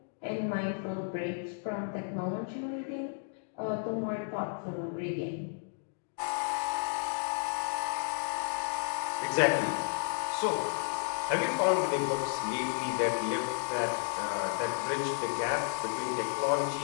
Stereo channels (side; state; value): right; silent; digital silence